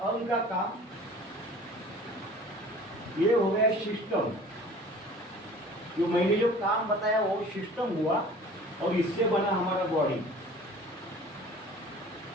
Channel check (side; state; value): both; normal; correlation 0.46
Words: अंग का काम। ये हो गया सिस्टम। जो मैंने जो काम बताया वो सिस्टम हुआ और इससे बना हमारा बॉडी।